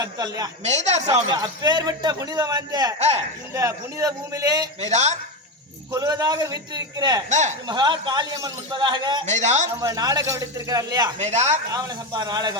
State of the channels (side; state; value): both; normal; correlation 0.14